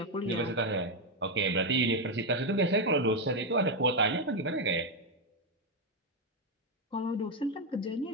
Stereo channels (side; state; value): both; normal; correlation 0.04